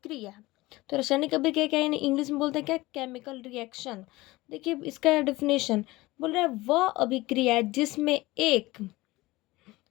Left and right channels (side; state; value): right; quieter; 20.0 dB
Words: तो रासायनिक अभिक्रिया क्या है, इंग्लिश में बोलते हैं क्या? Chemical reaction. देखिए इसका डेफिनेशन बोल रहा है, वह अभिक्रिया जिसमें एक